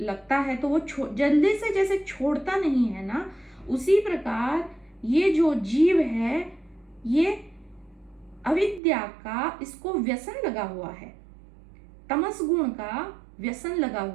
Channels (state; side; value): drops out; left; at 8.8 s